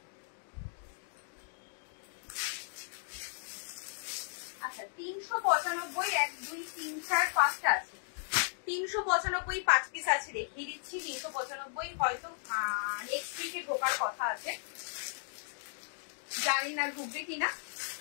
আচ্ছা, 395, 1, 2, 3, 4, 5টা আছে। 395 5 পিস আছে, দেখিয়ে দিচ্ছি। 395 হয়তো নেক্সট উইকে ঢোকার কথা আছে, জানি না ঢুকবে কিনা,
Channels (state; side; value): silent; right; digital silence